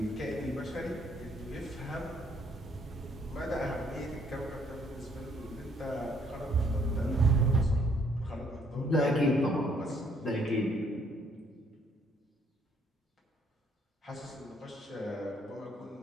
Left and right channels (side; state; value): both; normal; correlation 0.66